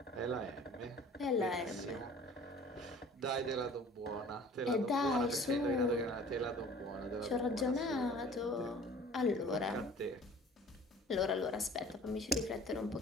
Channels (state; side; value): normal; both; correlation 0.48